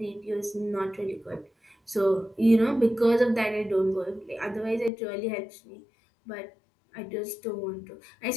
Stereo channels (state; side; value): drops out; right; at 4.9 s